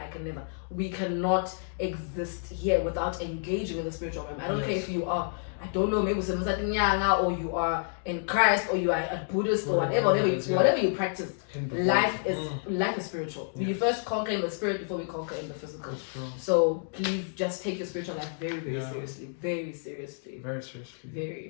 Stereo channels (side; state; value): right; silent; digital silence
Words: We cannot exist here without engaging in the spiritual realm. I don't care if you are, I don't know, maybe or you are in Christ, or you are a Buddhist, or whatever you practice. Life is spiritual. We first conquer in the spirit before we conquer in the physical. So please just take your spiritual life very, very seriously. Very seriously. Very